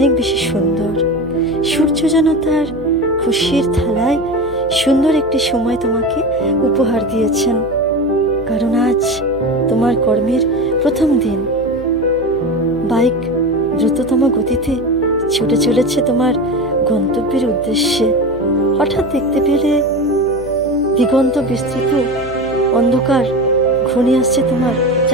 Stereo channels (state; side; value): noise; right; hum, 17 dB below the sound